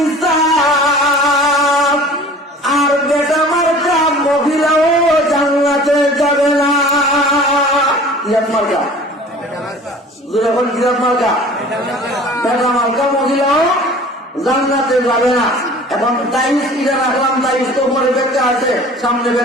আর বেটা মার্কা মহিলাও জান্নাতে যাবে না। কিরাত মার্কা, যখন কিরাত মার্কা বেটা মার্কা মহিলাও জান্নাতে যাবে না। এখন তাইস কিরা রাখলাম, তাইস তো উপরে ব্যাখ্যা আছে, সামনে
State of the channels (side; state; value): both; normal; correlation 0.45